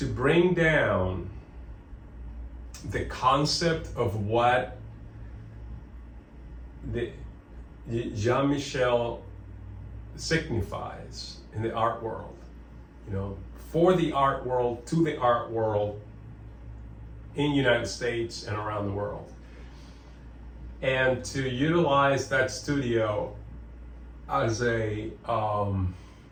bring down the concept of what the Jean-Michel signifies in the art world, you know, for the art world, to the art world in the United States and around the world. And to utilize that studio as a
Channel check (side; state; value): both; identical; correlation 1.00